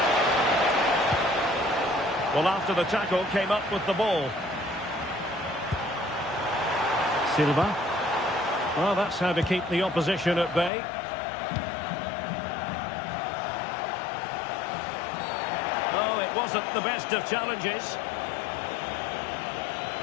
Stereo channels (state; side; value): drops out; right; at 10.7 s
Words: Well, after the tackle, came up with the ball. Silva. Well, that's how to keep the opposition at bay. Oh, it wasn't the best of challenges.